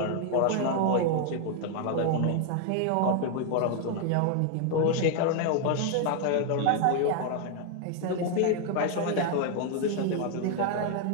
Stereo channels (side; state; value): both; different; correlation 0.00